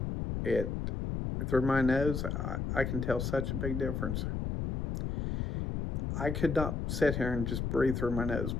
through my nose, I can tell such a big difference. I could not sit here and just breathe through my nose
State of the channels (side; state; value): left; noise; rumble, 2 dB below the sound